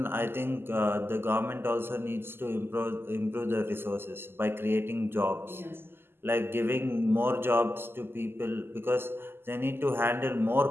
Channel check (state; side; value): late; left; 0.11 ms